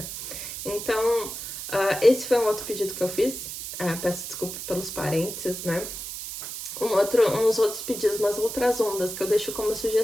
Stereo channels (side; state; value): right; noise; hiss, 8 dB below the sound